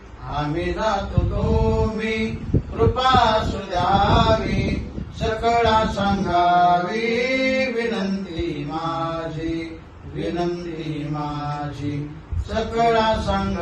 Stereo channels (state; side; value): identical; both; correlation 1.00